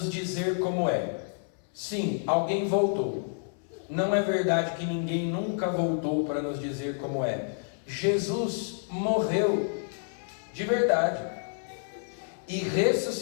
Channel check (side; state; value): right; silent; 59 dB below the other